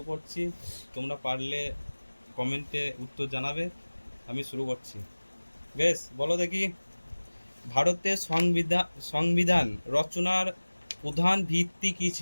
করছি, তোমরা পারলে কমেন্টে উত্তর জানাবে। আমি শুরু করছি। বেশ, বলো দেখি, ভারতের সংবিধান রচনার প্রধান ভিত্তি কী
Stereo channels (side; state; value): both; inverted; correlation -1.00